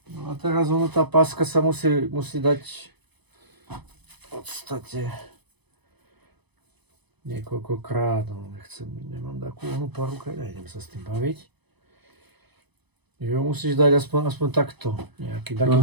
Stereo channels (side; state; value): left; late; 0.99 ms